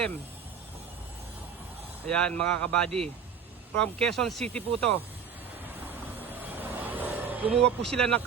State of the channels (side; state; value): left; quieter; 7.0 dB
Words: Ayan mga kabady, from Quezon City po to. Gumawa po sila ng